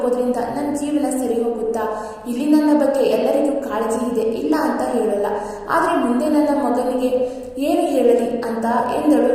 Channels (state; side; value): identical; both; correlation 1.00